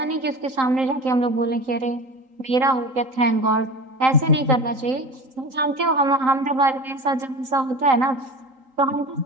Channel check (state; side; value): late; left; 3.8 ms